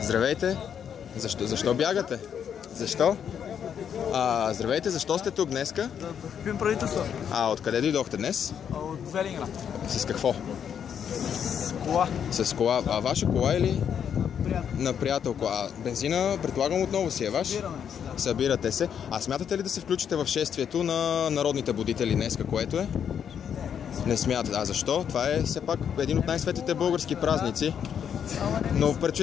Здравейте. Защо бягате? Защо? Здравейте, защо сте тук днеска? Да подкрепим правителство. Откъде дойдохте днес? От Велинград. С какво? С кола. С кола. Ваша кола или? Приятел. На приятелко. Бензина, предполагам, отново си е ваш? Събираме се, да. Събирате се. Смятате ли да се включите в шествието на народните будители днеска, което е? Не смятате. Защо? Това е все пак един от най-светлите български празници. Но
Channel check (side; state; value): right; quieter; 8.2 dB